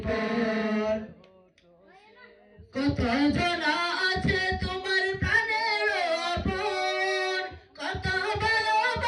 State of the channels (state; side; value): identical; both; correlation 1.00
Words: পর। কত জনা আছে তোমার প্রাণের আপন, কত